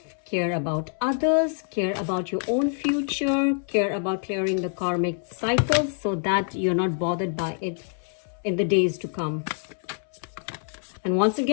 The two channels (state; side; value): silent; right; 61 dB below the other